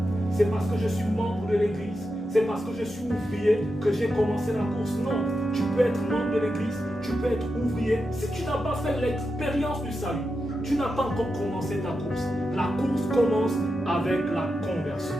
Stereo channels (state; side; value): normal; both; correlation 0.88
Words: c'est parce que je suis membre de l'église, c'est parce que je suis ouvrier que j'ai commencé la course. Non, tu peux être membre de l'église, tu peux être ouvrier. Si tu n'as pas fait l'expérience du salut, tu n'as pas encore commencé ta course. La course commence avec la conversion.